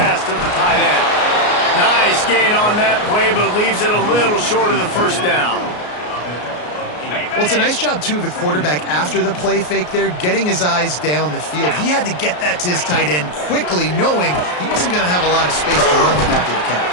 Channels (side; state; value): right; late; 33 ms